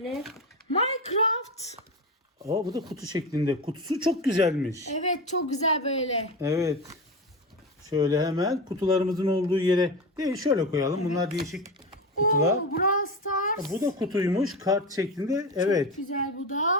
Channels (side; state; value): both; normal; correlation 0.22